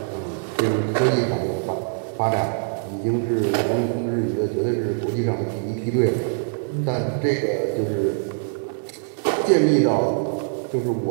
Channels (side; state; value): left; silent; digital silence